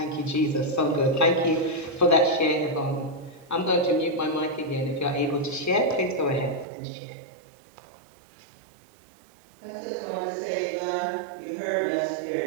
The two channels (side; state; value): left; drops out; at 6.7 s